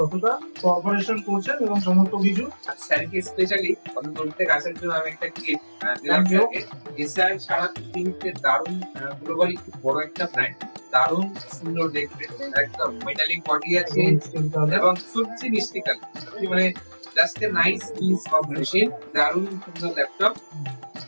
কোঅপারেশন করছেন এবং সমস্ত কিছু। স্যারকে স্পেশালি অত দূর থেকে আসার জন্য আমি একটা গিফট দিলাম Thank you. স্যারকে। এসআই সারা পৃথিবীতে দারুণ গ্লোবালি খুব বড় একটা ব্র্যান্ড, দারুণ সুন্দর দেখতে, একদম মেটালিক বডি আছে এবং সত্যি মিষ্টি কালার, মানে just a nice piece of machine. দারুণ সুন্দর ল্যাপটপ,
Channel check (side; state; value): both; inverted; correlation -1.00